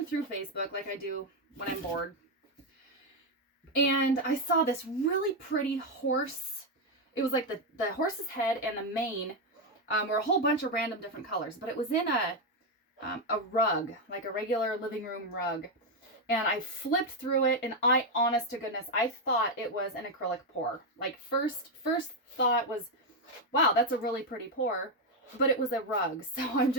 through Facebook like I do when I'm bored. And I saw this really pretty horse. It was like the horse's head and the mane were a whole bunch of random different colors, but it was in a rug, like a regular living room rug. And I flipped through it, and honest to goodness, I thought it was an acrylic pour. Like first thought was, wow, that's a really pretty pour, but it was a rug. So I'm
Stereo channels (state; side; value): normal; both; correlation 0.04